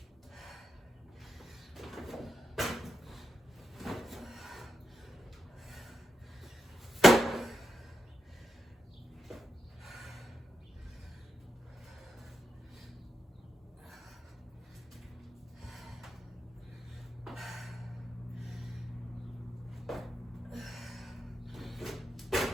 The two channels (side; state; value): both; normal; correlation 0.86